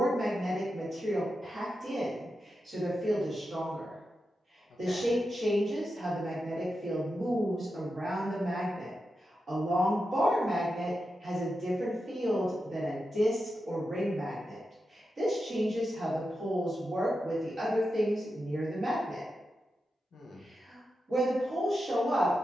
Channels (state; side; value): normal; both; correlation 0.89